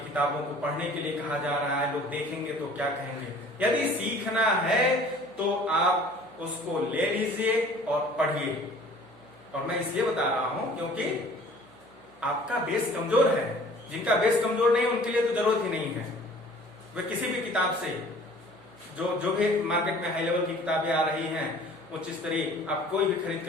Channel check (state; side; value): noise; right; hum, 28 dB below the sound